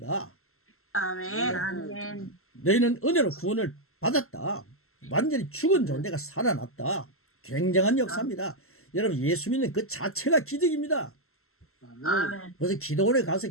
아멘. 아멘. 너희는 은혜로 구원을 받았다. 완전히 죽은 존재가 살아났다. 굉장한 역사입니다. 여러분, 예수 믿는 그 자체가 기적입니다. 아멘. 그래서 기도원에 가서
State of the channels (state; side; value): late; right; 0.62 ms